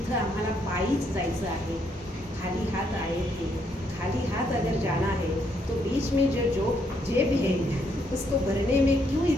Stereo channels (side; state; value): both; normal; correlation 0.73